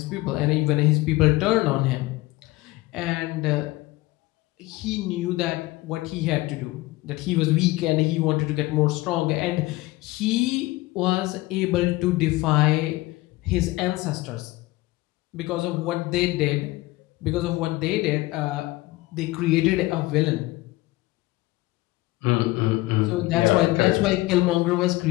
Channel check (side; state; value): right; quieter; 19.5 dB